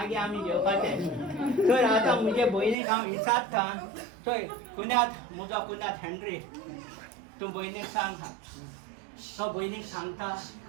आमी जेवपाचें तर आतां म्हजे भयणीक हांव विचारता चोय कुण्यात म्हजो कुण्यात हेनरी तूं भयणीक सांग तो भयणीक सांगता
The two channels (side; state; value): left; drops out; at 2.8 s